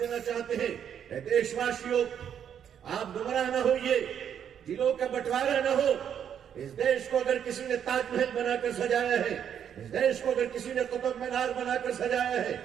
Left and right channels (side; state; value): left; quieter; 8.8 dB